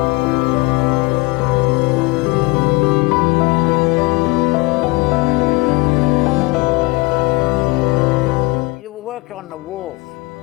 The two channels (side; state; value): right; quieter; 25.0 dB